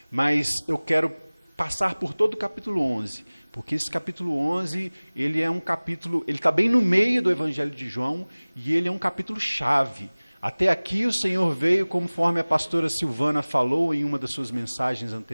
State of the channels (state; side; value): inverted; both; correlation -1.00